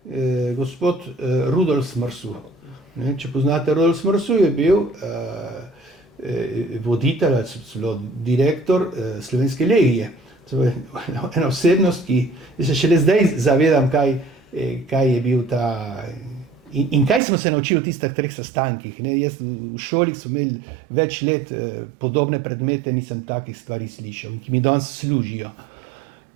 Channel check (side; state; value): left; drops out; at 17.2 s